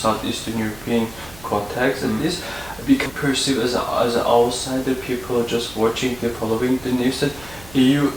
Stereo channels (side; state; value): right; noise; hum, 20 dB below the sound